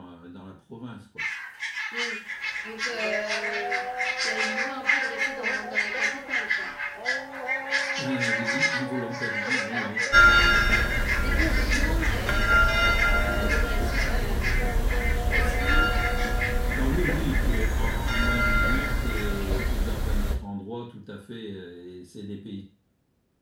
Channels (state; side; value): identical; both; correlation 1.00